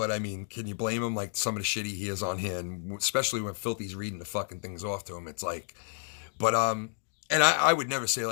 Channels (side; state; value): right; silent; digital silence